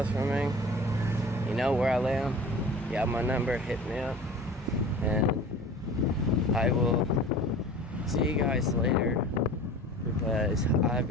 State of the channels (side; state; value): both; normal; correlation 0.40